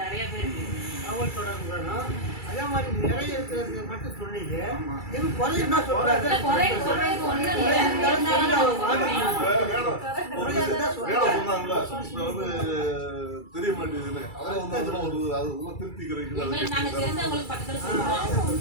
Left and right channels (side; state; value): right; late; 2.3 ms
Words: நிறைய பேருக்கு தகவல் தொடர்பு வேணும். அதே மாதிரி நிறைய இருக்கிறது மட்டும் சொன்னீங்க. இது குறையுன்னா சொல்றாங்க. சொல்றது ஒன்றும் தெரிய மாட்டேங்குதுன்னு அதெல்லாம் வந்து அது திருப்திக்கிறீங்க. நாங்கள் தெரிஞ்சவங்களுக்கு பக்கத்தில் சொல்லுவோம்.